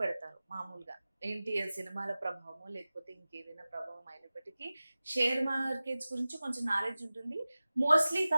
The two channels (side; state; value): both; inverted; correlation -0.97